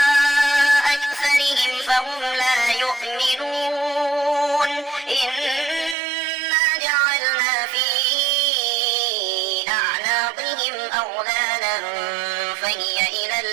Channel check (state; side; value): drops out; left; at 6.0 s